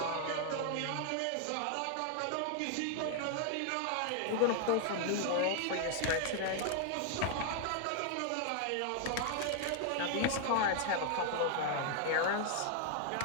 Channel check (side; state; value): both; different; correlation 0.00